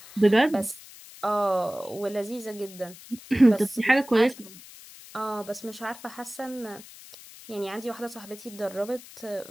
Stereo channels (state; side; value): noise; left; hiss, 18 dB below the sound